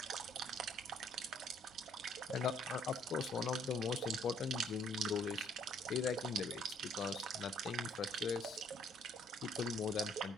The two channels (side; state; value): both; normal; correlation 0.63